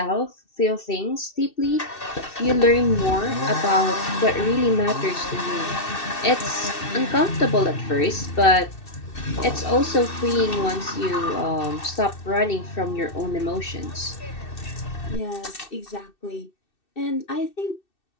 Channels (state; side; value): late; right; 2.6 ms